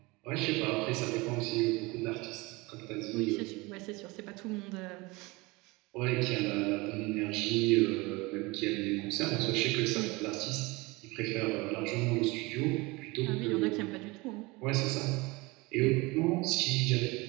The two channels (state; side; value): quieter; left; 24.0 dB